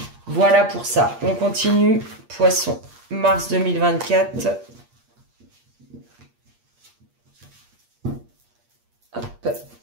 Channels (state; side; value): late; left; 8.5 ms